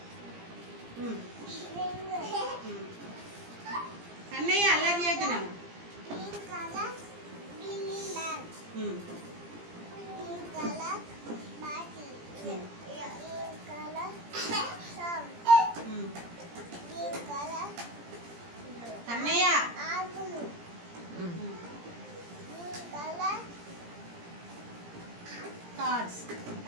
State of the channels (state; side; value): late; left; 17 ms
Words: అన్నయ్య అల్లరి చేస్తున్నాను. అన్నయ్య కార్డ్స్.